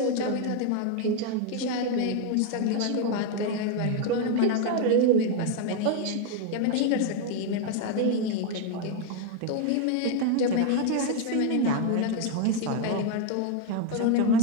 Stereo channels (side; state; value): both; different; correlation 0.01